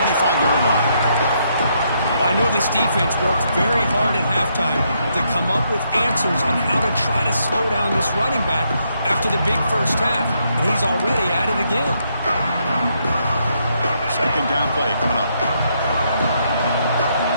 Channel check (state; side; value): inverted; both; correlation -0.76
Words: line. I know this defense worked very hard at halftime to come up with answers on how to try to slow down this running back after the big first half. And he's already at it again. Second down play coming up.